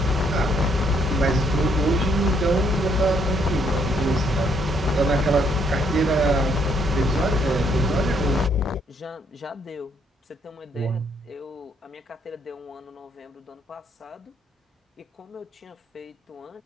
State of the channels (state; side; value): normal; both; correlation 0.70